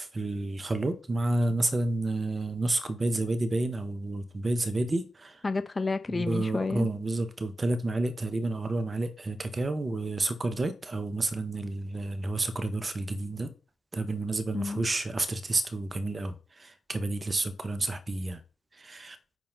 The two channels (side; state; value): both; normal; correlation 0.93